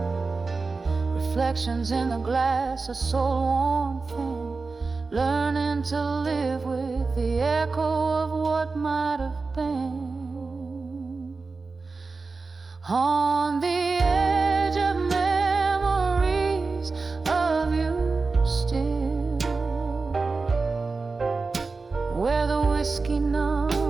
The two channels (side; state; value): left; quieter; 4.1 dB